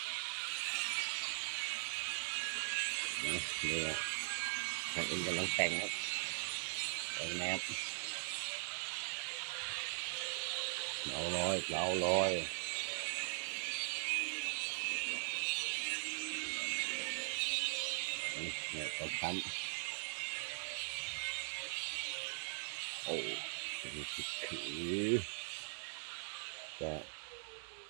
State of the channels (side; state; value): left; silent; digital silence